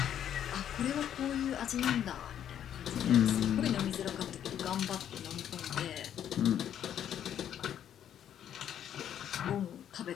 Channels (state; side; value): quieter; right; 9.9 dB